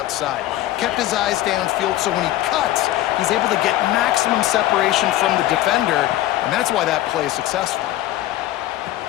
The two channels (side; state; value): right; quieter; 14.8 dB